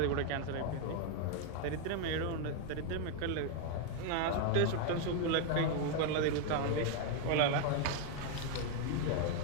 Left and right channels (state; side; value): different; both; correlation 0.01